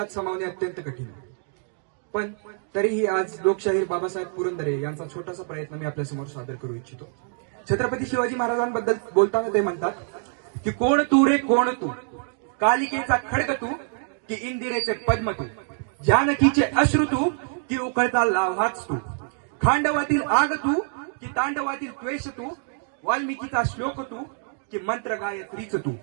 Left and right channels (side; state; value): left; silent; 61 dB below the other